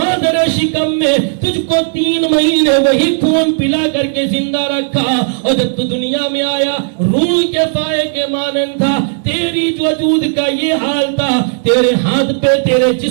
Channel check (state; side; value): silent; left; digital silence